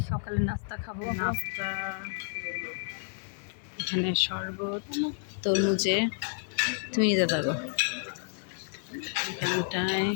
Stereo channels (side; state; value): right; silent; 57 dB below the other